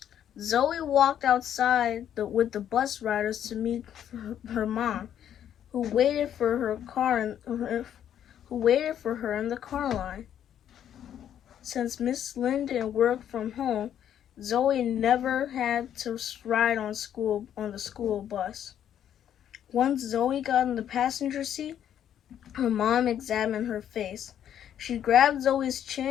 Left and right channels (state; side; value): quieter; right; 10.0 dB